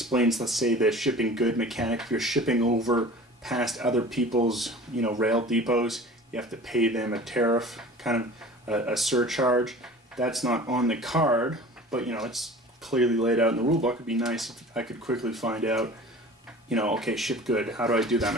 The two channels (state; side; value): normal; both; correlation 0.42